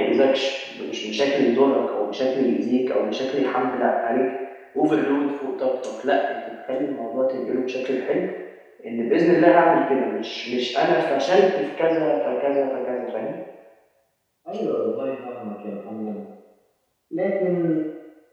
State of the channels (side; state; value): both; identical; correlation 1.00